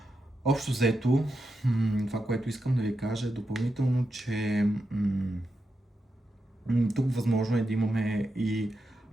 Общо взето, това, което искам да ви кажа е допълнително, че Тук възможно е да имаме и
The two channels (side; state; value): both; normal; correlation 0.87